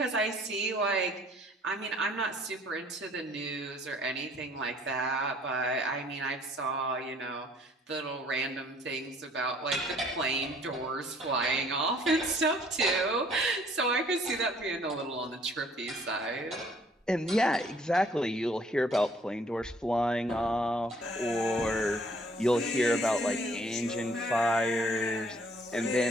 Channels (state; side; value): normal; both; correlation 0.60